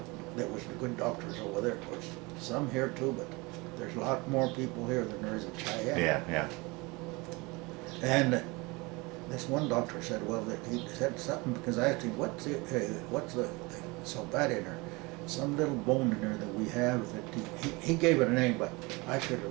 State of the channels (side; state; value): left; quieter; 25.3 dB